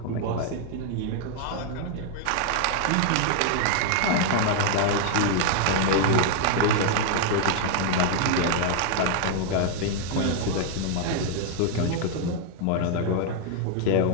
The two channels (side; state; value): both; different; correlation 0.00